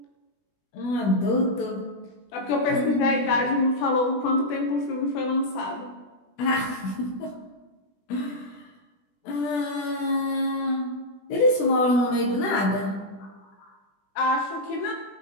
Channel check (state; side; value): late; right; 20 ms